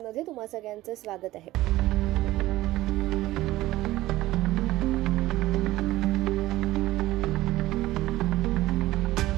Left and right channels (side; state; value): left; quieter; 16.6 dB